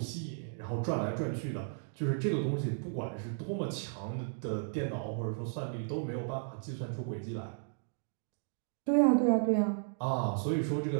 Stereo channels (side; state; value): left; silent; digital silence